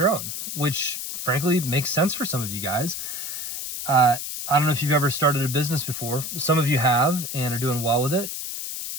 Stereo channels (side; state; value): left; noise; hiss, 6 dB below the sound